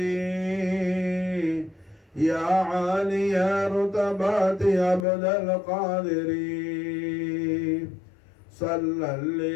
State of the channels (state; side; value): drops out; right; at 5.1 s